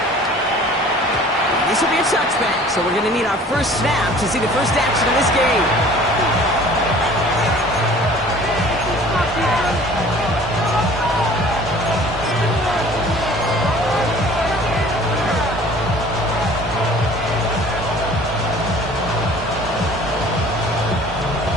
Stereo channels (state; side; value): normal; both; correlation 0.48